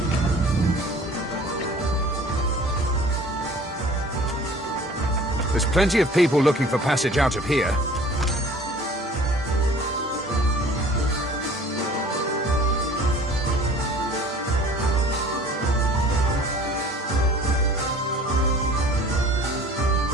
There's plenty of people looking for passage out of here.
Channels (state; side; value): normal; both; correlation 0.48